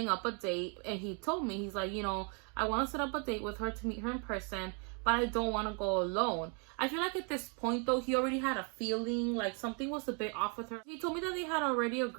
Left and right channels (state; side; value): quieter; left; 37.2 dB